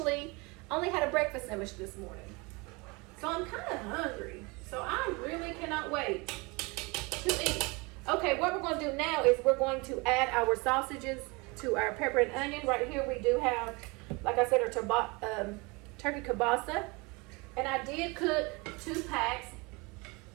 only had a breakfast sandwich this morning. So I'm kind of hungry. So I really cannot wait to eat. Okay, what we're going to do now is we're going to add our sausages to our pepper and onion. Right here we do have, like I said, our turkey kielbasa. And I did cook 2 packs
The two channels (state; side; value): quieter; left; 27.0 dB